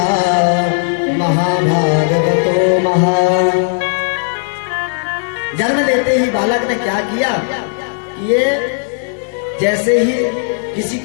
महाभागवतो महा। जन्म लेते ही बालक ने क्या किया कि ये जैसे ही किसी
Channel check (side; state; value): right; silent; 67 dB below the other